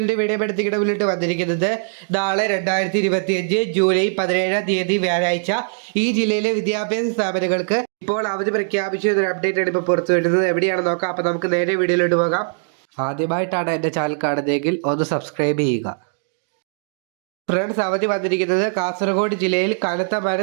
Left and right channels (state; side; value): silent; left; digital silence